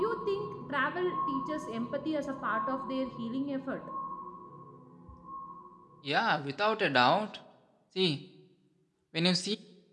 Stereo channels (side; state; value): both; identical; correlation 1.00